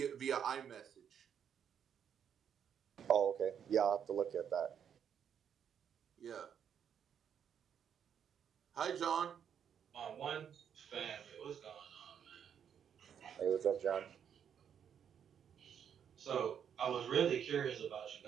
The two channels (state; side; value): quieter; left; 8.3 dB